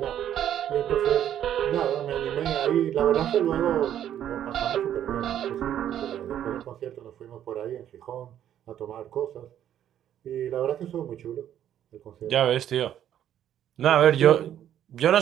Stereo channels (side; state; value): left; quieter; 10.7 dB